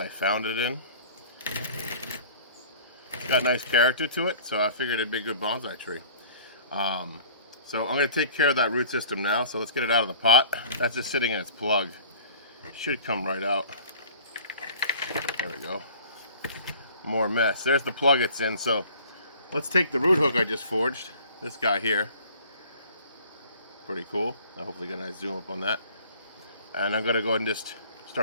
found it in. It's got nice character to it, so I figured it'd be a good bonsai tree. So I'm going to take care of that root system now, so let's get it out of the pot. That's just sitting in its plug. Should come right out. There we go. More mess. There's the plug it's in, so let's take the root hook I just forged. This guy here. Pretty cool. I'll hopefully get a nice zoom up on that. And I'm going to go ahead and just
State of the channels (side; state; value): both; inverted; correlation -0.48